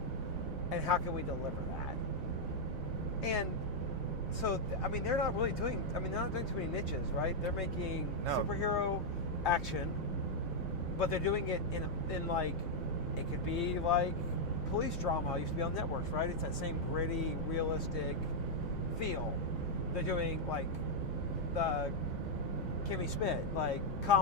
And how can we deliver that? And so, I mean, they're not doing too many niches, right? They're making superhero action, but they're doing it in like, it could be like police drama. It used to be on networks, right? It's that same gritty, realistic feel. They're doing like the Kimmy Schmidt, like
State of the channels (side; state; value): both; normal; correlation -0.03